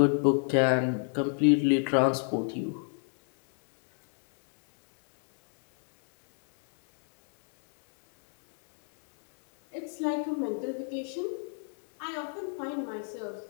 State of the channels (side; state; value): right; silent; 56 dB below the other